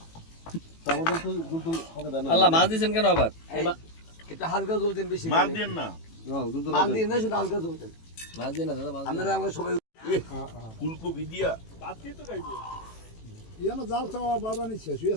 আমাদের তো দুধ হবে না আল্লাহ মাছ দিছেন কেন আবার এটা হালকা জ্বলতেন বেশি মাছ দেন না দুধ মাছ দিয়ে না শুধু হালকা জ্বলতেন মাছ দিন না দাদা মাছ আপনারা আমরা সবাই ফুলকপি দিয়া ইয়ানো জাল চাওয়া বাবা নি শেষ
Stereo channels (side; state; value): right; late; 18 ms